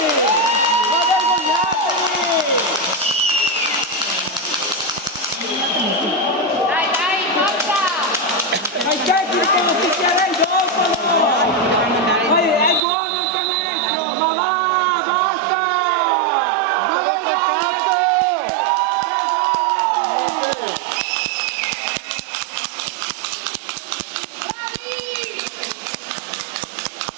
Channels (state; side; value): drops out; left; at 12.8 s